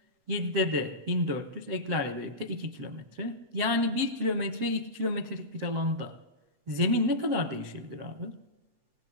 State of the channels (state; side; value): late; left; 7.6 ms